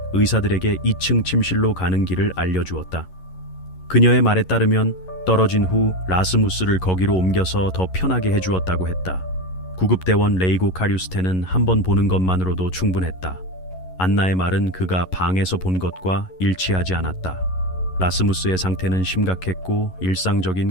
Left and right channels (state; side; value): late; right; 11 ms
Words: 의사들에게 2층 침실로 가는 길을 알려주었다. 그녀의 말에 따르면 떨어진 후 라스무스를 거기로 옮겨서 더 편하게 해주었다고 했다. 구급대원 레이고 카류스테는 한 번 보는 것만으로도 충분했다. 안나의 말은 그가 방에서 본 것과 일치하지 않았다. 라스무스의 상태는 심각했고